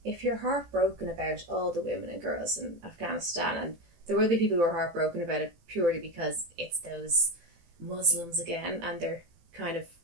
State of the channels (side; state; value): left; late; 18 ms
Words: if you're heartbroken about all the women and girls in Afghanistan, and there will be people who are heartbroken about it purely because it's those Muslims again, and they're kind of